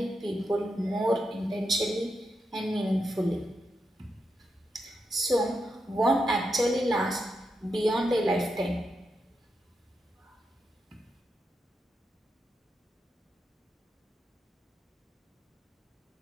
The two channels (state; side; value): normal; both; correlation 0.85